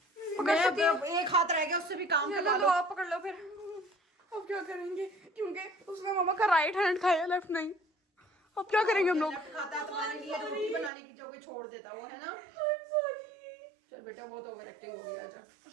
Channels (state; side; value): drops out; left; at 10.9 s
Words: एक हाथ रह गया, उससे भी काम करवा लो। आप पकड़ लो फिर। अब क्या करेंगे, क्योंकि उसने मम्मा का राइट हैंड खाया, लेफ्ट नहीं। अब क्या करेंगे हम लोग? खाता है तुम्हारे लिए रोटी बनाने की जगह छोड़ देता वो, है ना। चल बेटा बहुत ओवर एक्टिंग हो गई, आजा।